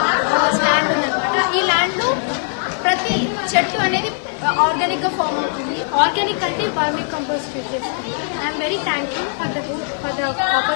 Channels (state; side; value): silent; right; 55 dB below the other